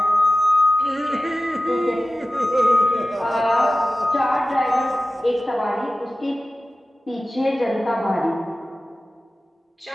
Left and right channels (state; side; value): normal; both; correlation 0.96